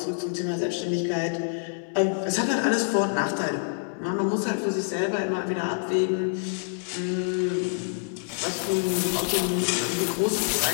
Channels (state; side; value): silent; right; digital silence